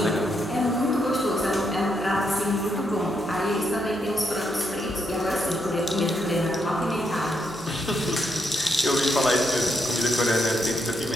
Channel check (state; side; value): normal; both; correlation 0.79